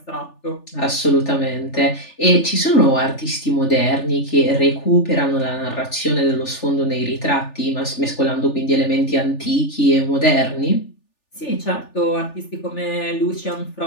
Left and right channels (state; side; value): late; right; 3.4 ms